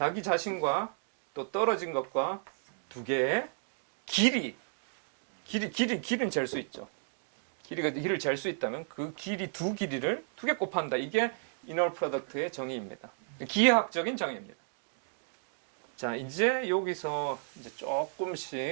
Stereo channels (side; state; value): left; silent; digital silence